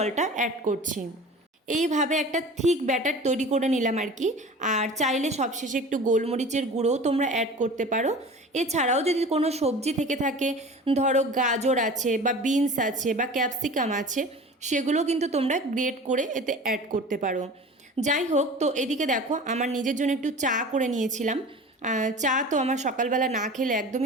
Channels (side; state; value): both; normal; correlation 0.39